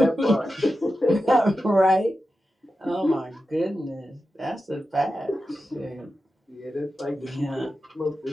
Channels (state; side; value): normal; both; correlation 0.91